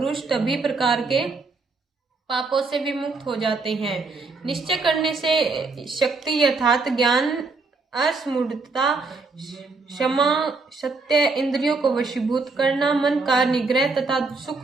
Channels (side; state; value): left; quieter; 3.9 dB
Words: सभी प्रकार के पापों से विमुक्त हो जाते हैं। निश्चय करने से शक्ति अर्थात ज्ञान, असमूढ़ता, क्षमा, सत्य, इंद्रियों को वशीभूत करना, मन का निग्रह तथा